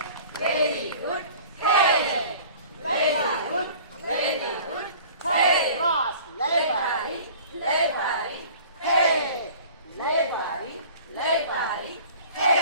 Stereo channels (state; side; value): inverted; both; correlation -0.46